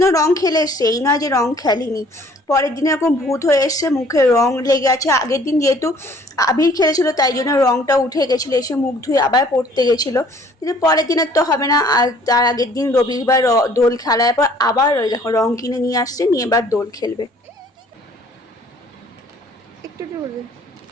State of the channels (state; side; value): normal; both; correlation 0.57